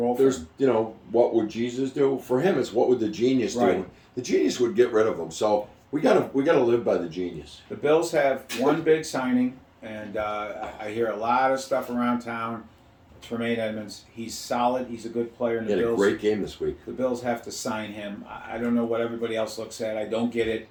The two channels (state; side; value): identical; both; correlation 1.00